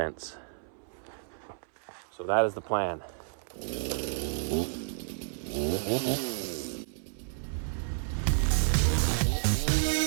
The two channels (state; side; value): silent; left; 57 dB below the other